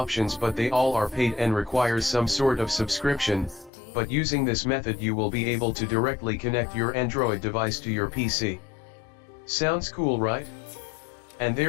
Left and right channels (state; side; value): drops out; right; at 3.7 s